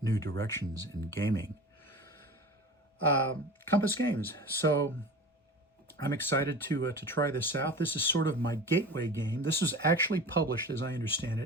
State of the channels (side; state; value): both; normal; correlation 0.34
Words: New directions in gaming. Compass Games. So I'm excited to try this out. This is sort of my gateway game. This is actually published, as I understand